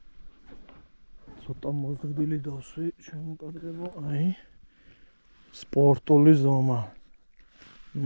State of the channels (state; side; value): inverted; both; correlation -1.00